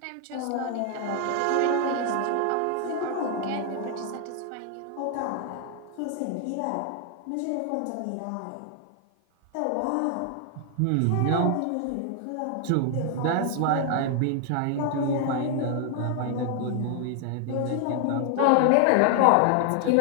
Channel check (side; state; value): both; different; correlation 0.00